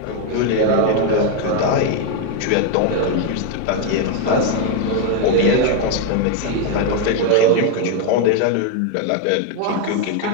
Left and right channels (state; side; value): different; both; correlation 0.01